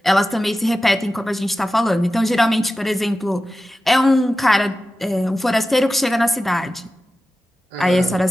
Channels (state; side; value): normal; both; correlation 0.94